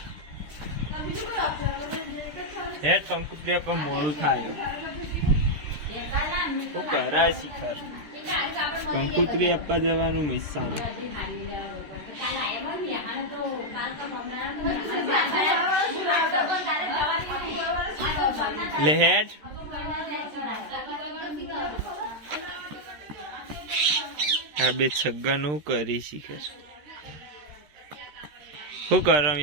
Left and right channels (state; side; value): late; left; 13 ms